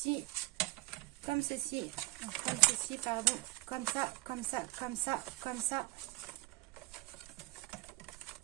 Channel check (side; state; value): left; quieter; 19.6 dB